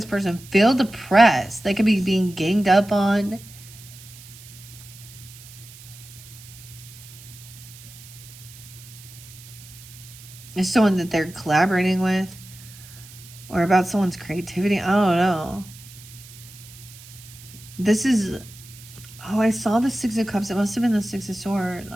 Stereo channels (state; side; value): noise; right; hiss, 19 dB below the sound